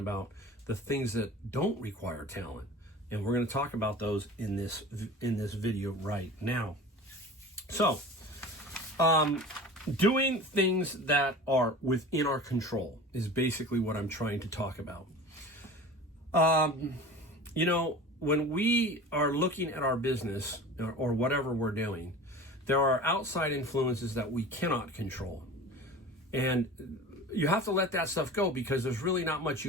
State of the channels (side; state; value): both; normal; correlation 0.37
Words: The things that don't require talent. And we're going to talk about those in this video right now. So, doing things that are within our control is basically what I'm trying to talk about. You know, when we are looking at our business or whatever we're doing, there are outside influences that we cannot control. And you have to let that stuff go because there's really not much